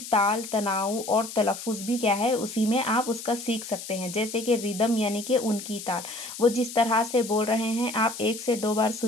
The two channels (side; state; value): left; noise; hiss, 10 dB below the sound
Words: ताल तनाव और तलफ़ुज़ भी क्या है उसी में आप उसका सीख सकते हैं। जैसे कि रिदम यानी कि उनकी ताल, वो जिस तरह से बोल रहे हैं आप 1 से 2 बार